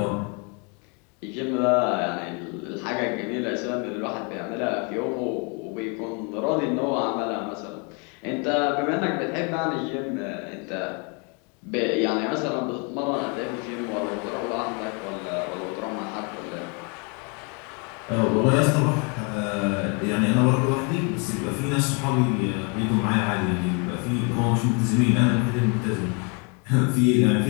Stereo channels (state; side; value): quieter; right; 34.5 dB